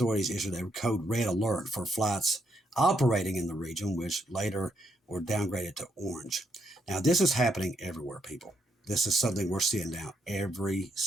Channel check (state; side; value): normal; both; correlation 0.76